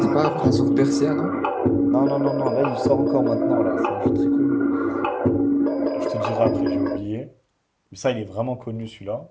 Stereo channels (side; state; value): both; identical; correlation 1.00